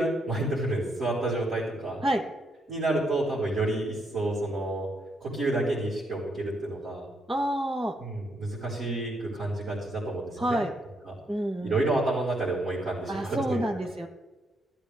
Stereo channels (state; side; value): normal; both; correlation 0.76